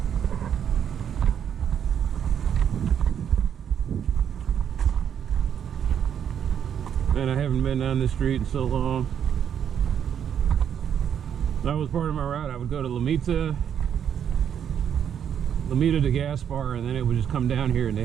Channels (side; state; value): left; quieter; 8.7 dB